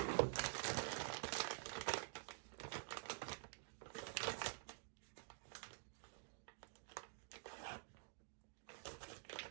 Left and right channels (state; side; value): silent; left; digital silence